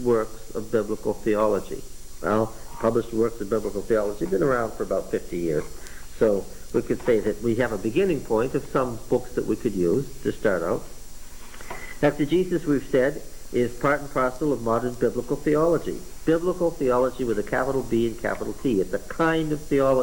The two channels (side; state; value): both; identical; correlation 1.00